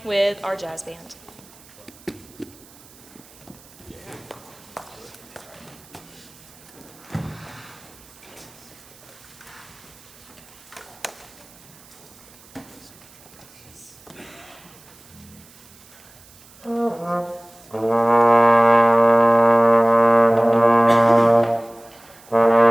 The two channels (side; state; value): right; noise; hiss, 24 dB below the sound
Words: with our jazz band.